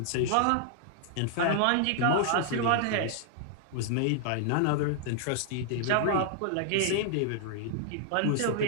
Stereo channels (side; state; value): both; different; correlation 0.00